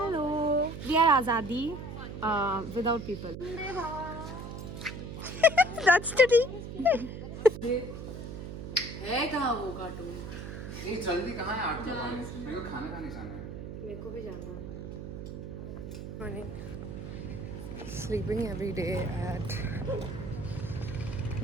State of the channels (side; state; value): right; noise; hum, 8 dB below the sound